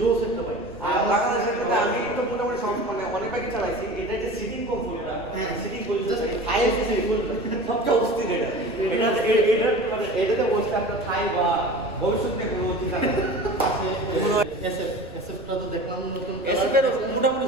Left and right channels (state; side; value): noise; right; rumble, 21 dB below the sound